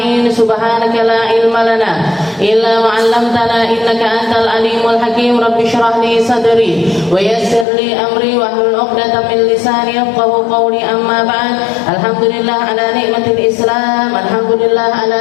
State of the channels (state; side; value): drops out; right; at 7.7 s